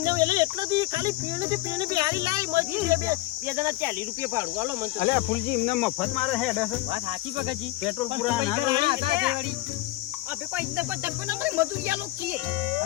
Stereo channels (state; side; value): quieter; right; 17.9 dB